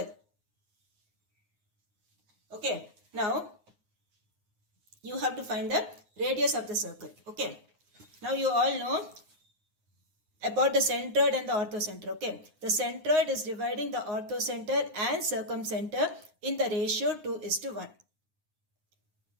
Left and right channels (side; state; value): left; late; 9.6 ms